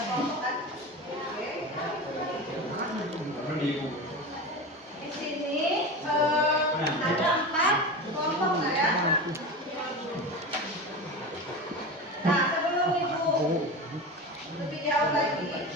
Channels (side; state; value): both; normal; correlation 0.27